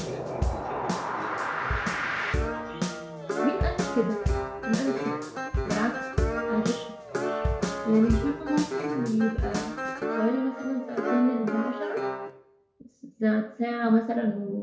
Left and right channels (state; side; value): identical; both; correlation 1.00